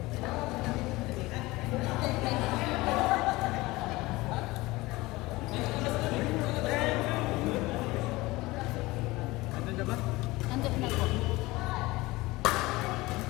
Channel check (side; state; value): right; quieter; 20.6 dB